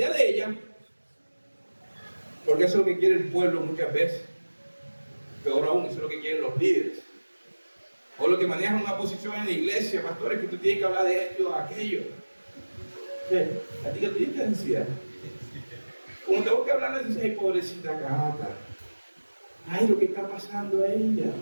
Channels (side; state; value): both; inverted; correlation -1.00